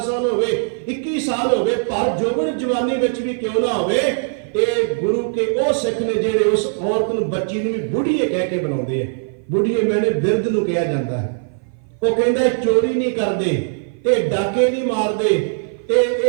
ਸਾਲ ਹੋਵੇ, 21 ਸਾਲ ਹੋਵੇ, ਪਰ ਜੋਬਨ ਜਵਾਨੀ ਵਿੱਚ ਵੀ ਕਿਉਂ ਨਾ ਹੋਵੇ, ਇਹ ਗੁਰੂ ਕੇ ਉਹ ਸਿੱਖ ਨੇ ਜਿਹੜੇ ਉਸ ਔਰਤ ਨੂੰ, ਬੱਚੀ ਨੂੰ ਵੀ ਬੁੱਢੀਏ ਕਹਿ ਕੇ ਬੁਲਾਉਂਦੇ ਆ। ਬੁੱਢੀਏ ਮੈਨੇ ਬਿਰਧ ਨੂੰ ਕਿਹਾ ਜਾਂਦਾ ਹੈ। ਉਹ ਕਹਿੰਦਾ ਚੋਰੀ ਨਹੀਂ ਕਰਦੇ, ਇਹ ਡਾਕੇ ਨਹੀਂ ਮਾਰਦੇ,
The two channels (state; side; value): silent; left; 55 dB below the other